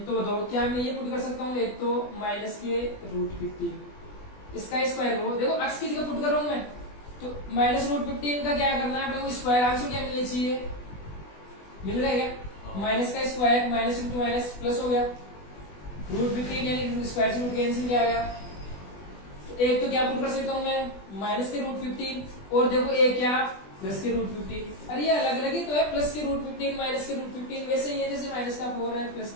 तो बताओ क्या मैं ये पुट कर सकता हूँ, एक तो माइनस के रूट 15, इसका स्क्वायर करो, देखो एक्स की जगह पुट कर रहा हूं मैं, तो माइनस रूट 15 का क्या करना है अपने को, स्क्वायर आंसर क्या मिलना चाहिए, मिल रहा है क्या, माइनस का square minus into minus plus हो गया, रूट 15 यानी स्क्वायर से रूट कैंसिल किया गया, तो एक तो क्या पुट कर सकता हूं मैं, माइनस के रूट 15, और देखो एक क्या प्लस के रूट 15, अरे ये अलग अलग ही तो है, प्लस के रूट 15 माइनस के रूट 15 वैसे ही है जैसे माइनस का 4 है प्लस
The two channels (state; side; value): late; right; 20 ms